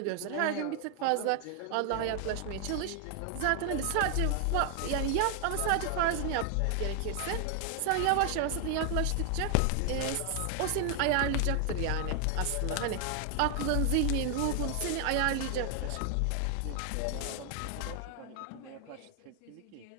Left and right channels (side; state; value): both; different; correlation 0.00